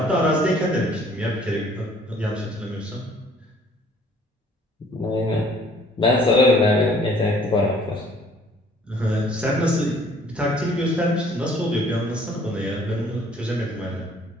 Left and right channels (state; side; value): normal; both; correlation 0.57